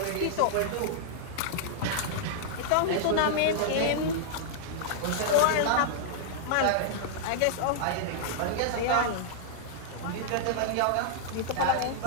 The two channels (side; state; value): both; different; correlation -0.01